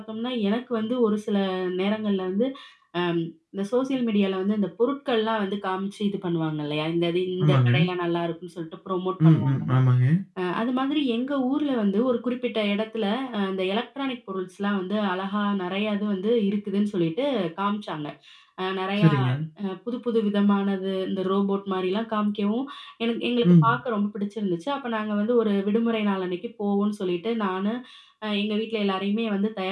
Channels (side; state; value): both; identical; correlation 1.00